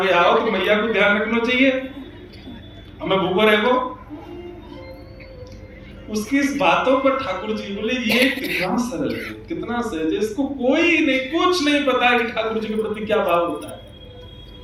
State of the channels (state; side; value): identical; both; correlation 1.00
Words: आओ तो मैया को ध्यान रखना चाहिए, हमें भूखो रहेगो। उसकी इस बातों पर ठाकुर जी बोले ये कितना सरल है, कितना सहज है, इसको कोई नहीं, कुछ नहीं पता है कि ठाकुर जी के प्रति क्या भाव होता है।